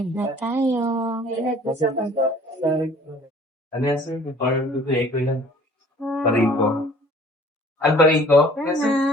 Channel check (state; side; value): normal; both; correlation 0.52